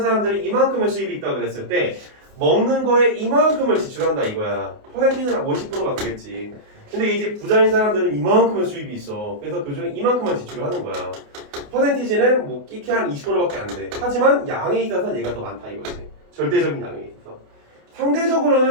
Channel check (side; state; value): left; late; 28 ms